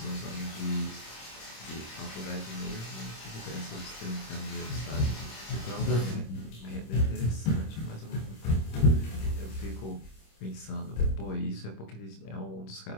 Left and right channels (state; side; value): late; right; 26 ms